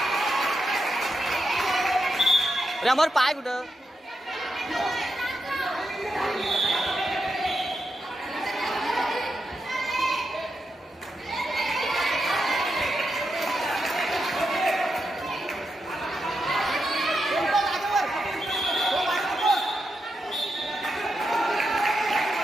अरे अमर पाय कुठं.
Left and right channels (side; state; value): both; normal; correlation 0.85